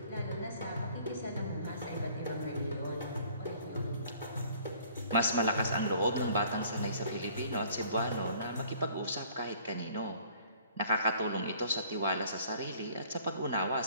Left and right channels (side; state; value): both; inverted; correlation -0.55